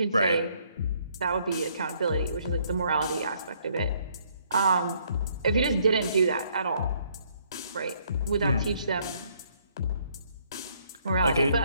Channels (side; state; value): both; inverted; correlation -0.67